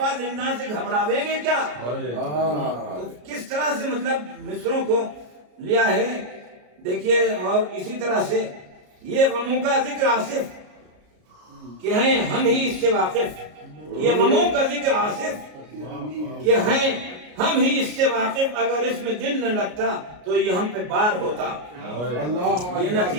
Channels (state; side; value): late; left; 33 ms